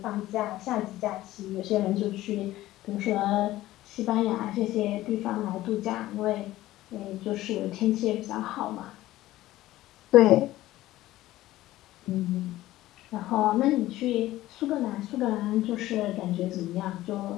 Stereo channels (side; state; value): right; quieter; 15.8 dB